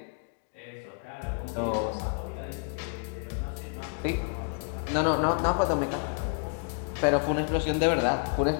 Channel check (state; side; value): quieter; right; 39.1 dB